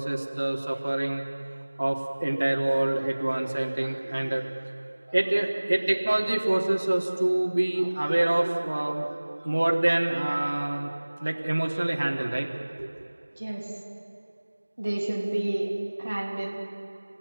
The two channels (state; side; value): inverted; both; correlation -1.00